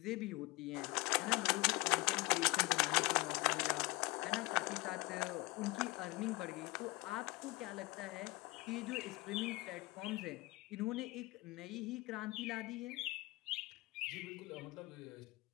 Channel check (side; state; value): right; quieter; 22.3 dB